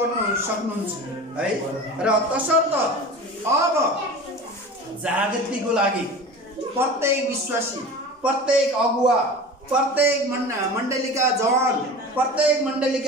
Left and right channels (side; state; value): both; normal; correlation 0.35